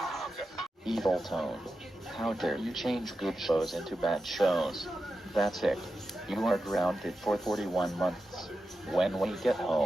Evil Tone. How dare you change good shows into bad shows? That's it. You are grounded for 41 months. When we get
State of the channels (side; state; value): both; normal; correlation 0.90